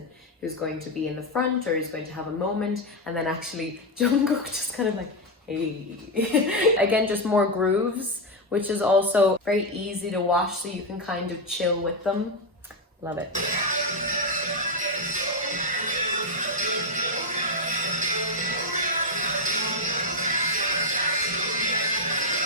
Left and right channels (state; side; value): normal; both; correlation 0.05